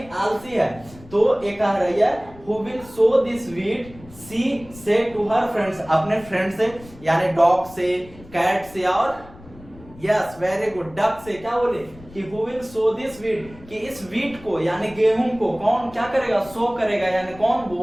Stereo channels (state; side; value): noise; left; rumble, 20 dB below the sound